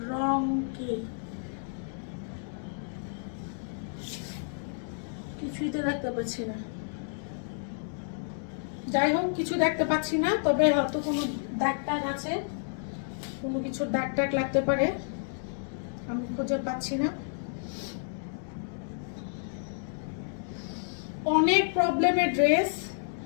রং কি কিছুই তো দেখতে পাচ্ছি না। যাই হোক, কিছু দেখতে পাচ্ছি না, তবে হয়তো কোনো দাগ টাগ আছে, কোনো কিছুর দাগ টাগ লাগতে পারে, আমি খুঁজে পাচ্ছি না। অনেক প্রবলেমের ড্রেস,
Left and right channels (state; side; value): silent; right; digital silence